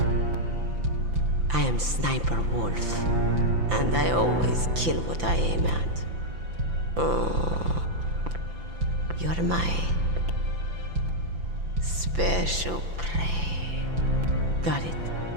I am Sniper Wolf, and I always kill what I aim at. Oh, you're my special prey. Got it?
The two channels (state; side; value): late; left; 5.9 ms